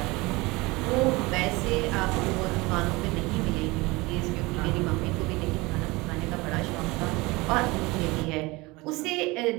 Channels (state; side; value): quieter; left; 23.1 dB